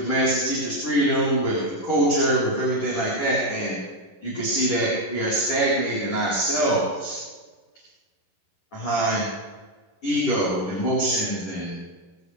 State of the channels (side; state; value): right; late; 11 ms